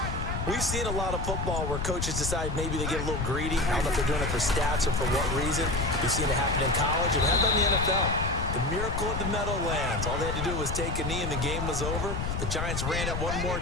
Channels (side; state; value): left; noise; rumble, 2 dB below the sound